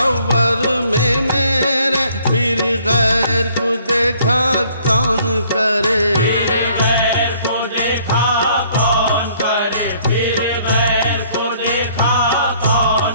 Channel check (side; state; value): both; inverted; correlation -0.61